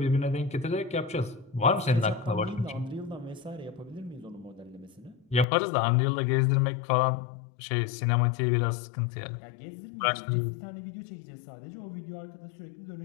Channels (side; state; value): right; drops out; at 5.5 s